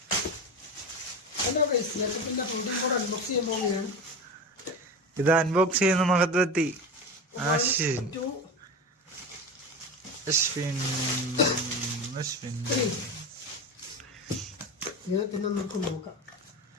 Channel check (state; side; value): normal; both; correlation 0.25